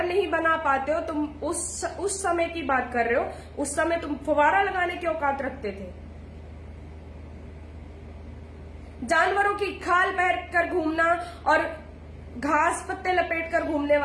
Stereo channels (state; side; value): identical; both; correlation 1.00